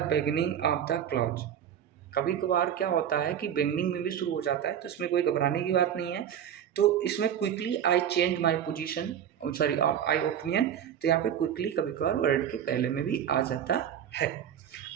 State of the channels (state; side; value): quieter; left; 9.4 dB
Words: beginning of the clause. कभी कभार क्या होता है कि बिगनिंग में भी शुरू हो जाता है, तो इसमें कोई घबराने की बात नहीं है। तो इसमें quickly I change my position, sorry I opinion, तो यहाँ पे क्विकली कभी कभार वर्ड के पहले में भी आ जाता है।